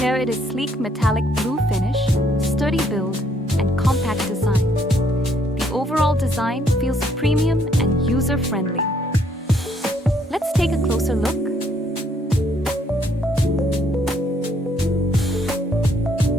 it is sleek metallic blue finish, sturdy build, and compact design. The overall design feels premium and user-friendly. Let's take a closer look.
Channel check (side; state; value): both; normal; correlation 0.68